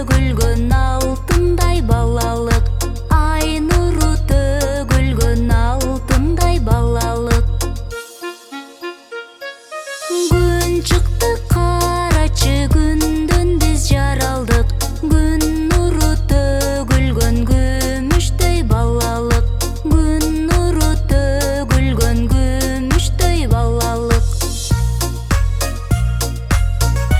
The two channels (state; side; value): identical; both; correlation 1.00